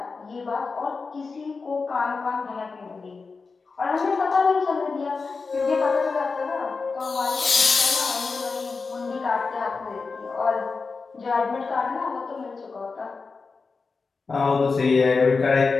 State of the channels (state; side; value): quieter; right; 4.5 dB